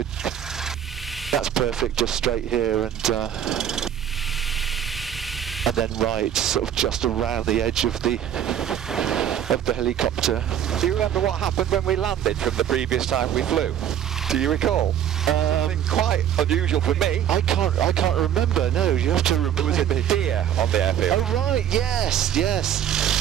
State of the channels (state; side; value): quieter; left; 10.0 dB